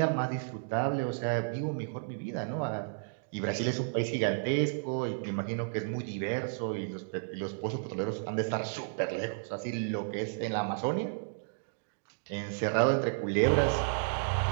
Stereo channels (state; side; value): silent; left; digital silence